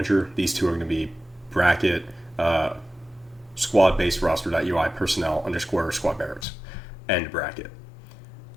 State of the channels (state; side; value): drops out; right; at 6.5 s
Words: These two are going to be bracket squad based roster.ui personnel _ squad barracks end bracket.